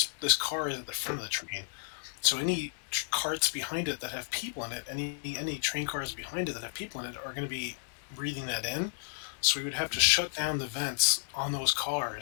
car is at the front of the train, so any carts behind it that have people in it, any train cars behind it that have people in it are going to be breathing that in. So we would have to shut down the vents on those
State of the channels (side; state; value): right; silent; 56 dB below the other